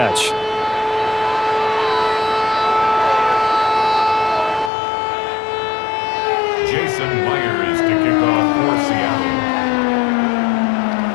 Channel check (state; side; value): drops out; right; at 4.7 s